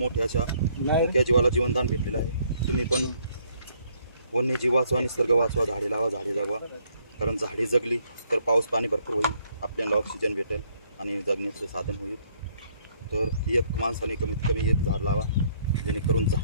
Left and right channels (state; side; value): inverted; both; correlation -0.67